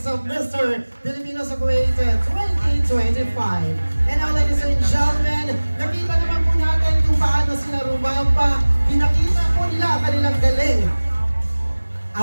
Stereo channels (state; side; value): inverted; both; correlation -1.00